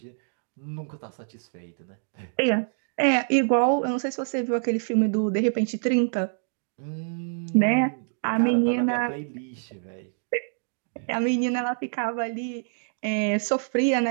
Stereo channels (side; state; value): left; silent; digital silence